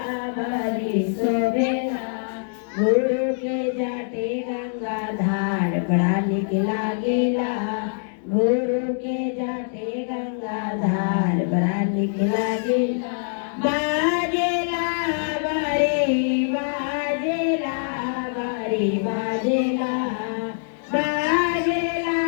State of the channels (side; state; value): right; silent; 63 dB below the other